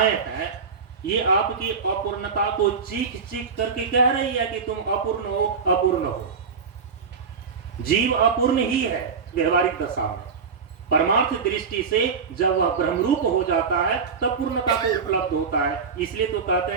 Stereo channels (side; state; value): left; quieter; 5.6 dB